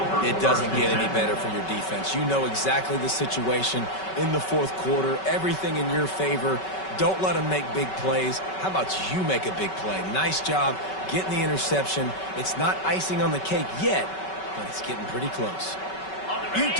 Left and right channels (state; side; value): late; right; 5.3 ms